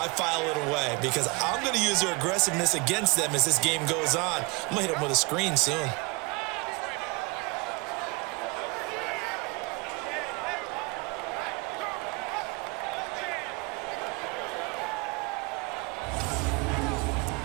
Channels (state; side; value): quieter; left; 27.8 dB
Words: file it away because I'm going to use their aggressiveness against them as this game goes on. I'm going to hit them with a screen soon.